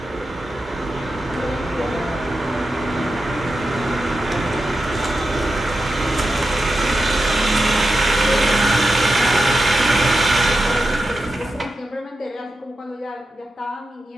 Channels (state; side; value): normal; both; correlation 0.90